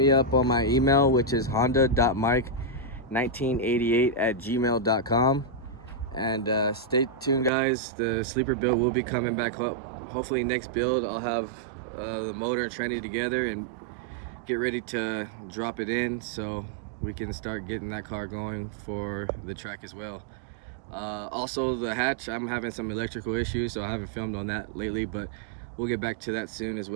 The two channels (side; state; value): left; drops out; at 7.5 s